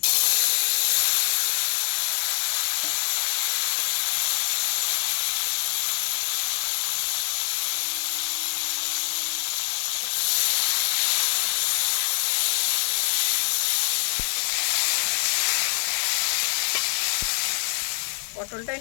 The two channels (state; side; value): silent; right; 62 dB below the other